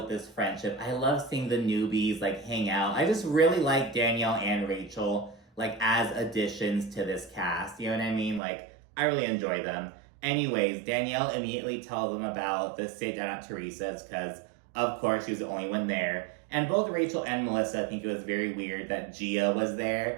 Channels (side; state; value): left; drops out; at 8.4 s